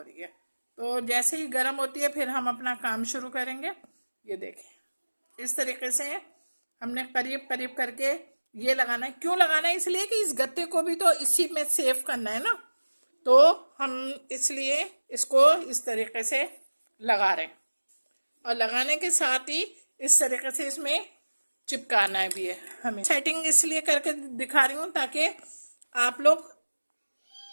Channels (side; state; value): both; inverted; correlation -1.00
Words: रही है। तो जैसे ही गरम होती है फिर हम अपना काम शुरू करेंगे। ये देखें, इस तरीके से हमने करीब करीब करके ये लगाना है। क्यों लगाना है, इसलिए कि इस गत्ते को भी तो इसी में सेव करना है ना, तो हम इसलिए इसको इस तरीके से लगा रहे हैं। और लगाने के साथ ही इस तरीके से इसमें चिपकाना भी है हमें। सेटिंग इसलिए करके दिखा रही हूँ ताकि आप लोग